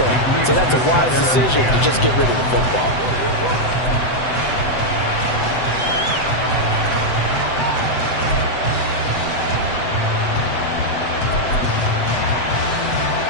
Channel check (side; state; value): right; late; 7.9 ms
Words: So that's a wise decision to just get rid of the football.